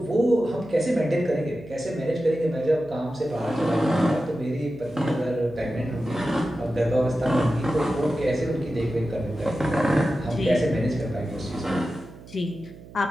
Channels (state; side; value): noise; right; hum, 18 dB below the sound